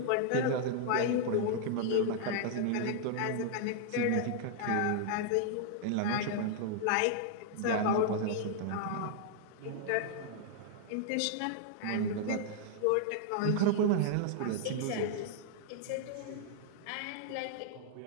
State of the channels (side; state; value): both; different; correlation 0.00